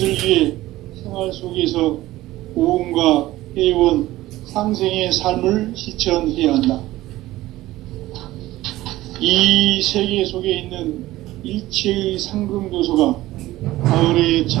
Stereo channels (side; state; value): left; quieter; 16.6 dB